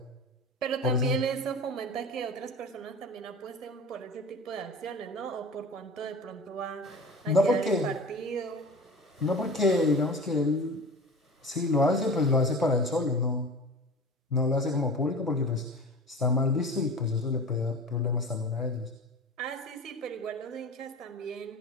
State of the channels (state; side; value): normal; both; correlation 0.36